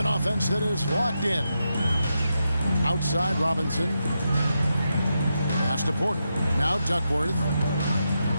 offense that is locked in. Outside, Robinson. Pass to Porter. Now Duckworth.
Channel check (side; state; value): both; inverted; correlation -0.85